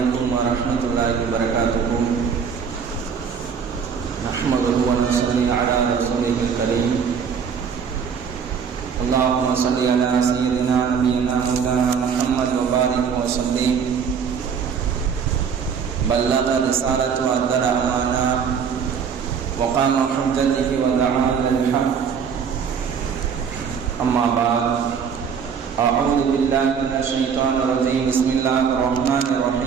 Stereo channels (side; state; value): left; quieter; 6.7 dB